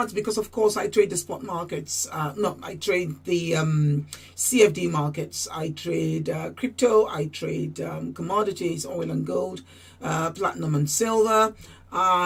because, of course, I trade the spot markets. I trade the CFD markets. I trade crypto. I trade commodities, oil and gold, platinum and silver.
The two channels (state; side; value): identical; both; correlation 1.00